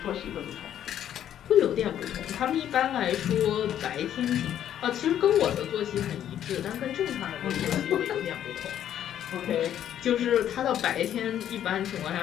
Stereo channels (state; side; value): quieter; right; 10.6 dB